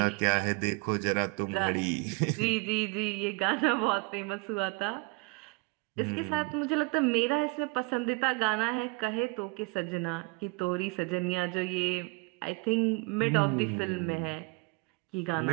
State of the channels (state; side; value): quieter; left; 27.7 dB